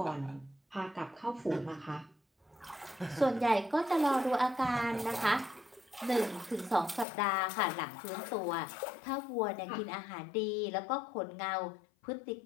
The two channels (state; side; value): drops out; right; at 7.1 s